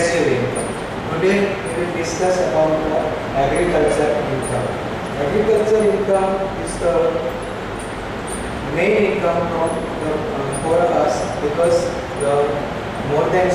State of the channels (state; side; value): identical; both; correlation 1.00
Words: income. Today we will discuss about the agriculture income. Agriculture income is the main income for us, because more than